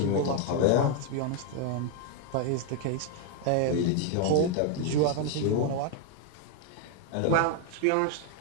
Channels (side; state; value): both; different; correlation 0.01